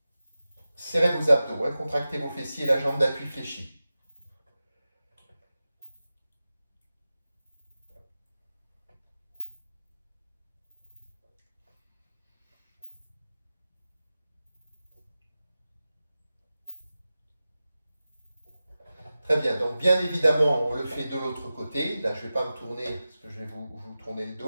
Serrez vos abdos, hein, contractez vos fessiers, la jambe d'appui fléchie. Très bien, donc bien évidemment, on le fait de l'autre côté. Là, je ne vais pas me tourner parce que je vais vous tourner le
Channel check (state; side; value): inverted; both; correlation -0.95